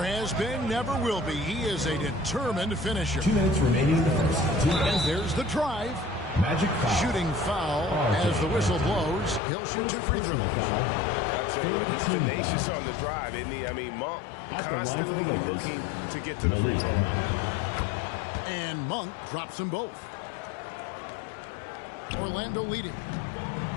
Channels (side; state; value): right; drops out; at 9.4 s